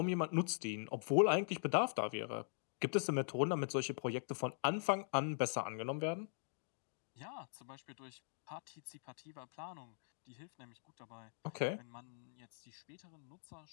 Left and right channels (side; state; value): right; silent; digital silence